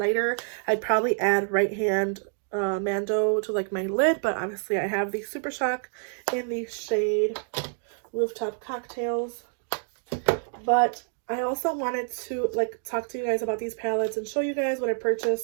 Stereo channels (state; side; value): silent; left; digital silence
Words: I'd probably add Right Hand Mando to like my lid, but obviously I have the Super Shock in the shade Rooftop Cocktails. But I also wanted to like talk to you guys about these palettes and show you guys what I